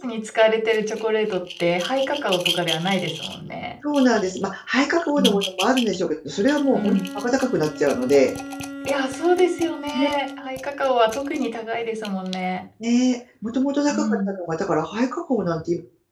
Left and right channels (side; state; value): both; identical; correlation 1.00